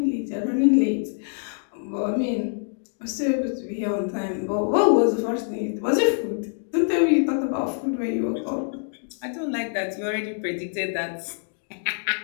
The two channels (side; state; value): right; silent; digital silence